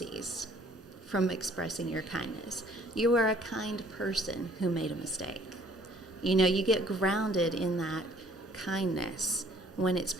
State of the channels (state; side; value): normal; both; correlation 0.58